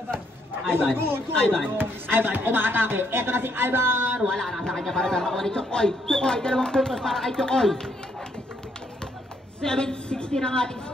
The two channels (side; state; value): both; normal; correlation 0.72